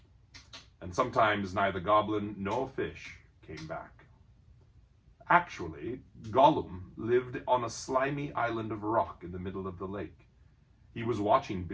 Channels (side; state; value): both; identical; correlation 1.00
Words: and sometimes neither goblin nor fish came back. Actually, Gollum lived on a slimy island of rock in the middle of the lake. He was watching